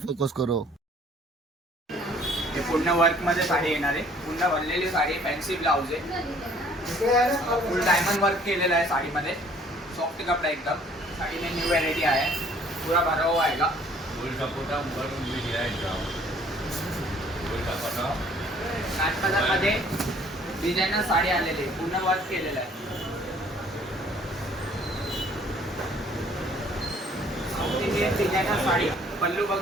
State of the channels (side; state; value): both; normal; correlation 0.58